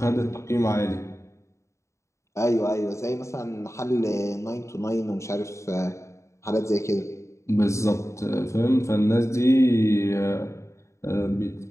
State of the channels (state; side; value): late; right; 0.14 ms